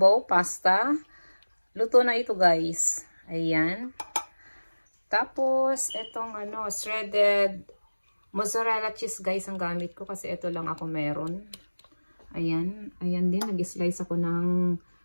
pasta. Luto na ito guys. Ayan. Tapos, itong shredded mozzarella cheese guys ang gamit ko kasi ito lang ako meron. Ayan. Ayan din, nag-slice ako ng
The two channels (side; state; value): both; inverted; correlation -1.00